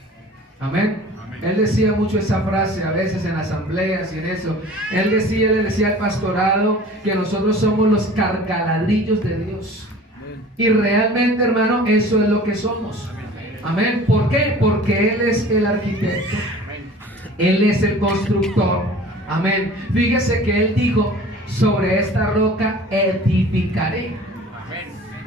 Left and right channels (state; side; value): normal; both; correlation 0.44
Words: Amén. Él decía mucho esa frase a veces en asambleas y en eso. Él le decía al pastorado que nosotros somos los cargaladrillos de Dios. Y realmente, hermano, eso es lo que somos. Amén. ¿Por qué? Porque Él es el arquitecto. Él es el constructor. Amén. Fíjese que Él dijo, sobre esta roca edificaré.